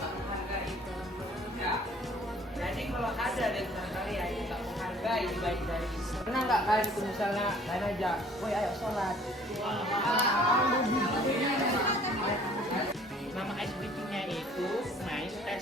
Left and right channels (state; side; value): normal; both; correlation 0.55